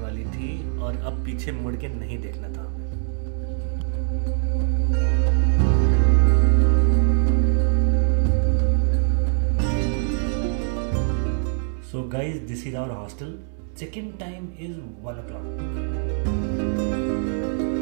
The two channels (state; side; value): silent; left; digital silence